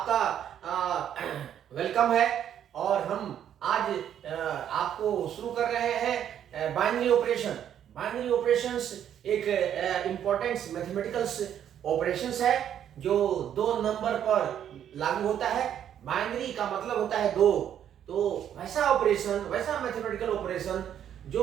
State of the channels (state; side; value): quieter; left; 9.8 dB